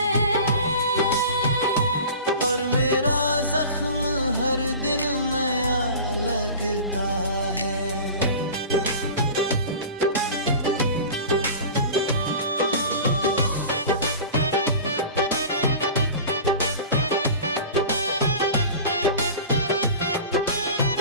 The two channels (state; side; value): inverted; both; correlation -0.37